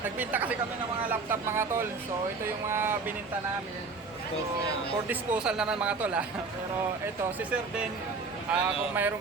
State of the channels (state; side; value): quieter; left; 4.3 dB